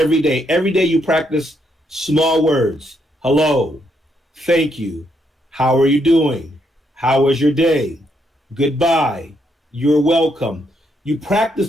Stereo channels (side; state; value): both; normal; correlation 0.76